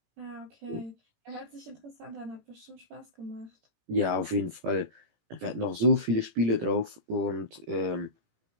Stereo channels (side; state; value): left; late; 18 ms